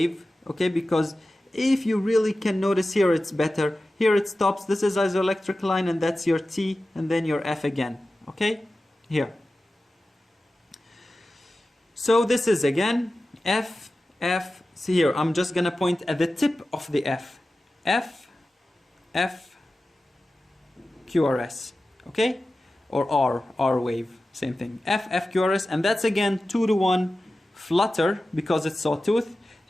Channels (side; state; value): both; normal; correlation 0.95